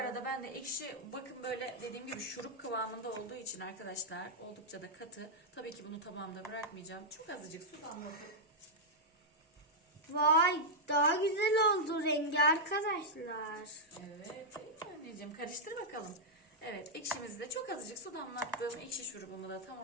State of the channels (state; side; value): normal; both; correlation -0.06